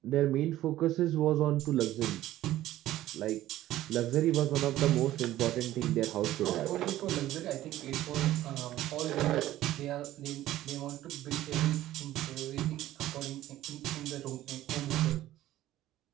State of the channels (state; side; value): quieter; left; 14.4 dB